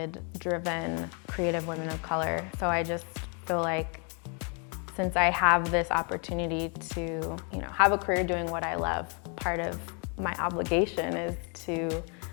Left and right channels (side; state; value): right; quieter; 36.4 dB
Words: driven, creative women of color. So I just feel like since I have this opportunity to, you know, have a career doing what I love, part of my obligation is to,